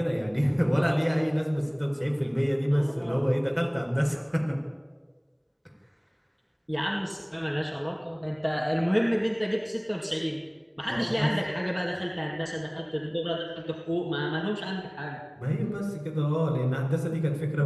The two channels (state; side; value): identical; both; correlation 1.00